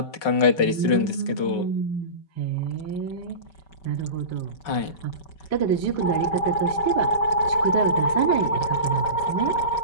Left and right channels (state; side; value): late; right; 5.4 ms